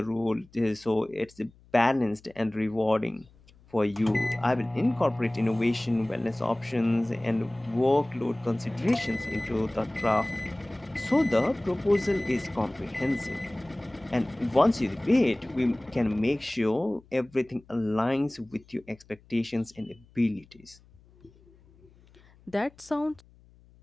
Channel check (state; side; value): noise; left; hum, 28 dB below the sound